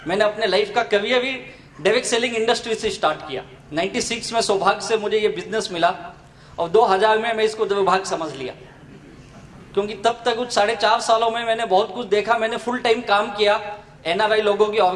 मैंने अपने लाइफ का करियर भी डायरेक्ट सेलिंग इंडस्ट्री से स्टार्ट किया। 96 में सौभाग्य से मुझे ये बिजनेस मिला और 2000 में मैं इसको दुर्भाग्य समझ लिया, क्योंकि तब तक कुछ 4.5 सालों में मैंने बहुत कुछ देखा। मैंने फुल टाइम काम किया, NRI लोगों की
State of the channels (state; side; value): identical; both; correlation 1.00